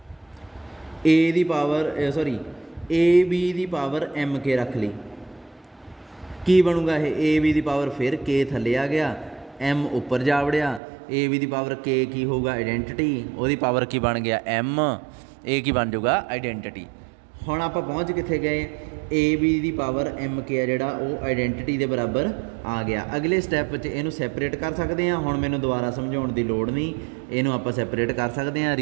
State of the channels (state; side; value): drops out; left; at 10.8 s